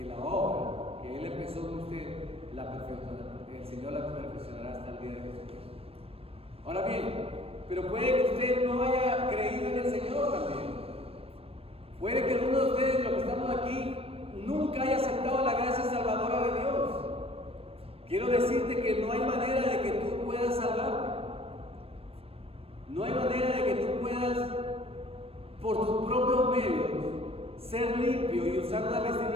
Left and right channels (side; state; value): left; late; 0.28 ms